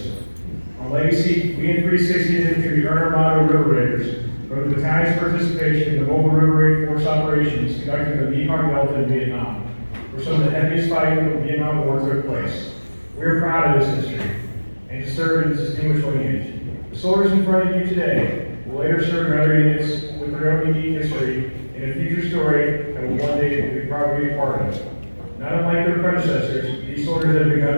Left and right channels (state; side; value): inverted; both; correlation -1.00